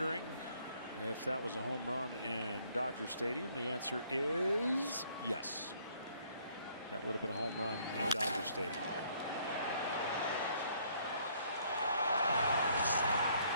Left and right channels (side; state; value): both; inverted; correlation -0.64